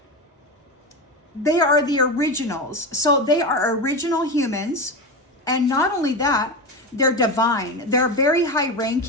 the originals. So they are original humans. And not only that, they're divine. They're very high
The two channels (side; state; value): both; normal; correlation 0.20